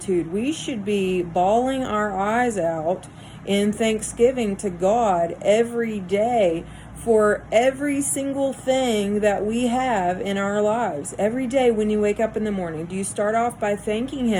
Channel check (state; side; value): identical; both; correlation 1.00